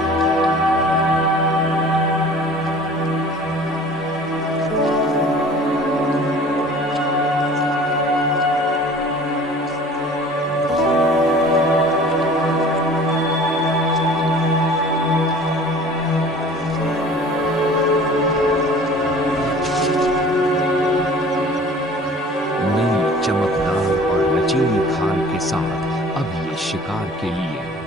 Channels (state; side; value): normal; both; correlation 0.46